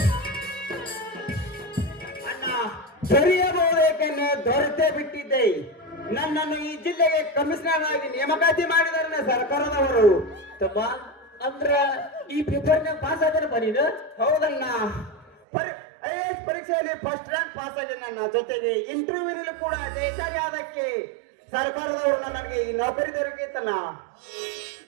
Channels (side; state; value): left; drops out; at 15.4 s